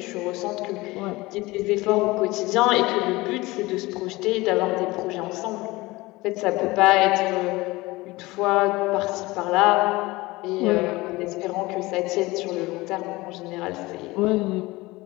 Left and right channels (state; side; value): quieter; right; 21.0 dB